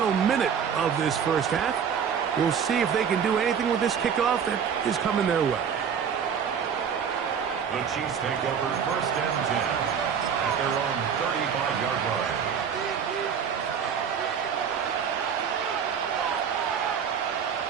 minute of this first half. We'll see if they can do anything with this kickoff that is coming their way. The Chiefs take over 1st and 10 at their own 35-yard line.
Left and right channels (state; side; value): quieter; left; 7.4 dB